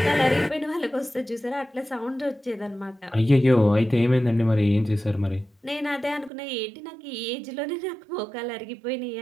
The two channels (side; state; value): left; drops out; at 6.3 s